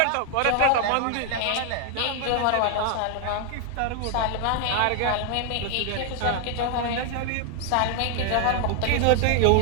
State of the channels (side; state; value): both; different; correlation 0.00